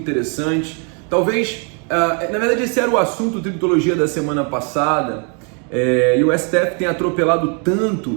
Talvez, na verdade, esse era o assunto do Tributologia da semana passada, e o STF tem atropelado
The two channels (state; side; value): quieter; left; 38.9 dB